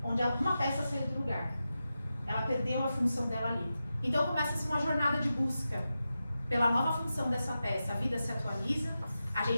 onde uma peça saiu do lugar. Ela perdeu a função dela ali. Então começa-se uma jornada de busca pela nova função dessa peça. A vida se atualiza, a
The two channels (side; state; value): both; inverted; correlation -0.91